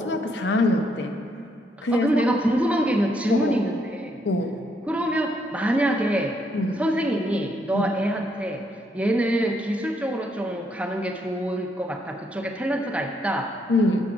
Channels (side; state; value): both; normal; correlation 0.74